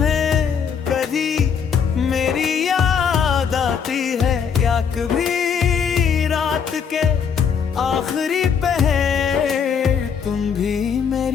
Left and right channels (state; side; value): quieter; right; 6.9 dB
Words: कभी मेरी याद आती है, या कभी रात के आखिरी पहर तुम भी